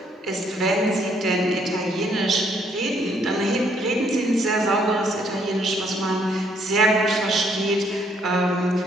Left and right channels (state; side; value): normal; both; correlation 0.68